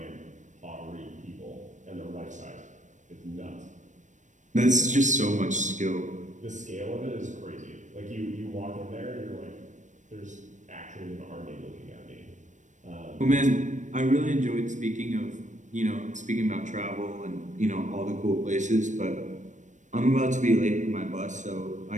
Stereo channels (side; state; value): left; late; 0.35 ms